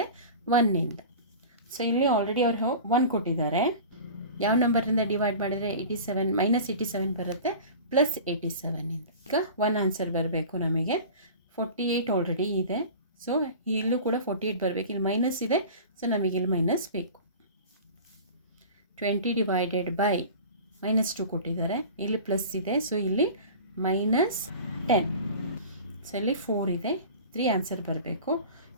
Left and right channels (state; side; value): inverted; both; correlation -0.37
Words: 1ನಿಂದ. ಸೊ ಇಲ್ಲಿ ಆಲ್ರೆಡಿ ಅವರು 1 ಕೊಟ್ಟಿದ್ದಾರೆ. ಯಾವ ನಂಬರಿಂದ ಡಿವೈಡ್ ಮಾಡಿದರೆ -87 ಬರುತ್ತೆ +87ನಿಂದ. ಈಗ 1 ಆನ್ಸರ್ ಬರಬೇಕು ನಮಗೆ. 48 ಆಲ್ರೆಡಿ ಇದೆ, ಸೊ ಇಲ್ಲೂ ಕೂಡ 48 ಬರಬೇಕು. ಇಲ್ಲಿ ಮೈನಸ್ ಇದೆ, ಸೊ ನಮಗೆ ಇಲ್ಲಿ ಮೈನಸ್ ಬೇಕು. 20 ಡಿವೈಡೆಡ್ ಬೈ -2 ಕೊಟ್ಟಿದ್ದಾರೆ, ಇಲ್ಲಿ ಪ್ಲಸ್ ಇದೆ, ಸೊ ಇಲ್ಲಿ -10. ಸೊ ಇಲ್ಲಿ 4 ಇದೆ, 3 ಆನ್ಸರ್ ಬರಬೇಕು.